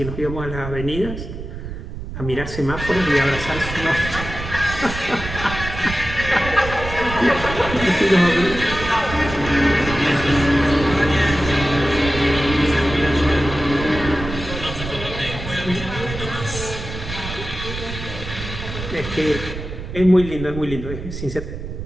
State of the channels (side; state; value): right; noise; rumble, 8 dB below the sound